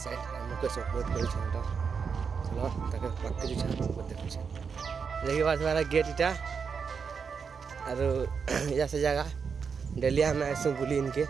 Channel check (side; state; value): left; quieter; 6.0 dB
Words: साइड मुकेश अपलोड कर चलो ताके पक्के दिशा देखु देखि बात हमारा गेट इटा और या से जगह डेली हम आसू बुली इनके